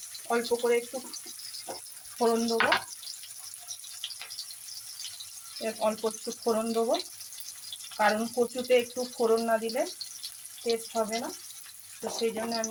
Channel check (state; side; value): identical; both; correlation 1.00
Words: অল্প করে একটু ফোড়ন দেবো, অল্প একটু ফোড়ন দেবো, কারণ কচুতে একটু ফোড়ন না দিলে টেস্ট হবে না। তো সেই জন্য